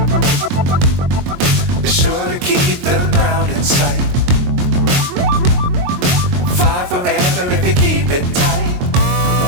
Be sure to keep the ground in sight. Fly fly forever if you keep it tight.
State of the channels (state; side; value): late; left; 22 ms